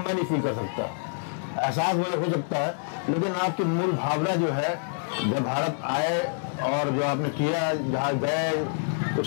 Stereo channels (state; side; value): silent; right; 60 dB below the other